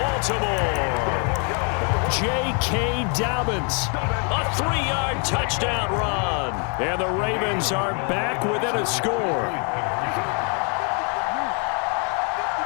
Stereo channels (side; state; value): right; quieter; 38.8 dB